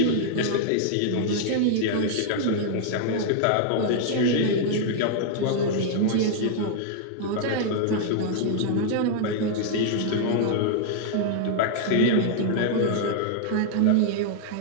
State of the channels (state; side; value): different; both; correlation -0.01